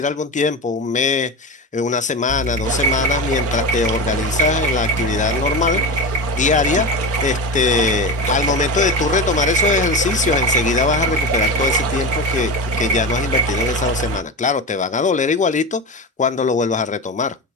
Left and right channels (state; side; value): normal; both; correlation 0.23